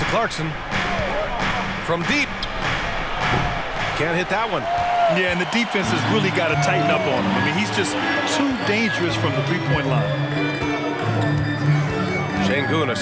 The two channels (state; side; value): identical; both; correlation 1.00